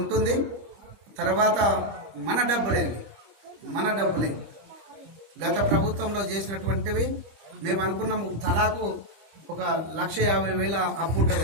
ఉంటుంది. తర్వాత మన డబ్బులే గత ప్రభుత్వంలో చేసినటువంటివి మేము అనుకున్నాము. తలాకు 1,50,000 అప్పు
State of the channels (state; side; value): late; left; 25 ms